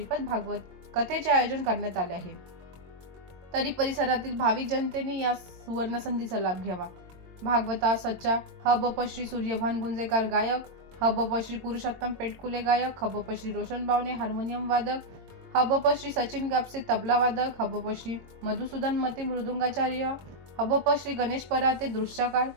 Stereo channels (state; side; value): late; left; 22 ms